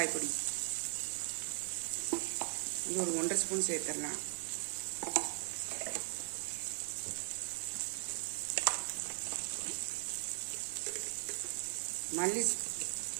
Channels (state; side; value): silent; left; digital silence